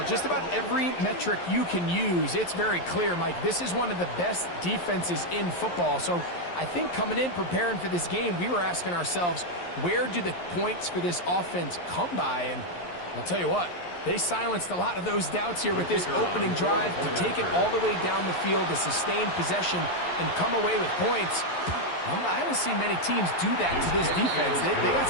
just about every metric you can use, it's very clear, Mike. This is one of the best defenses in football. So I think coming in, preparing for this game, we were asking ourselves, where do the points for this offense come by? And I'll tell you what, they silenced a lot of those doubts here with this opening drive to take it all the way down the field, to sustain possession and come away with points. I haven't seen many teams do that to this defense. They got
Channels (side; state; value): right; late; 11 ms